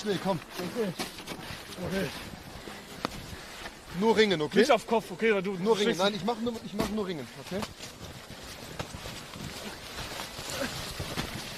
komm. Okay. Nur Ringen, okay? Nicht auf Kopf, okay? Weil du Nur Ringen. stehst- Nein, ich mach nur Ringen, okay?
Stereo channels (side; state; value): both; identical; correlation 1.00